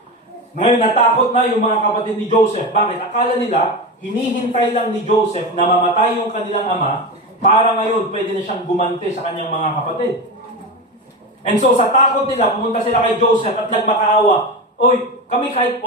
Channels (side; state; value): both; normal; correlation 0.20